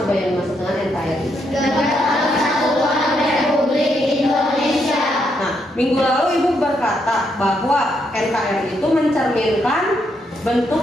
yang dimaksud dengan NKRI? Negara Kesatuan Republik Indonesia. Nah, minggu lalu Ibu berkata bahwa NKRI itu mencerminkan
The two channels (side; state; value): both; normal; correlation 0.77